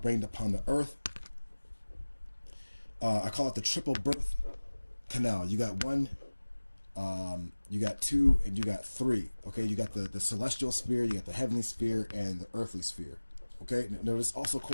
rained upon the earth. I call it the triple birth canal. You got one, you got two, and you got three. Okay, you got the celestial sphere, you got the heavenly sphere, and the earthly sphere. Okay, now this also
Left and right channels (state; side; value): inverted; both; correlation -1.00